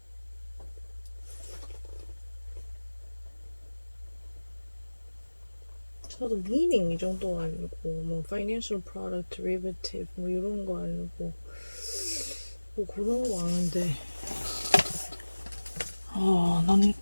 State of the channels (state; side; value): inverted; both; correlation -1.00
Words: 저도 meaning 이 정도 아니고 뭐 financial product derivative 뭐 이런 거 아니고 뭐 그런 거 아는데 난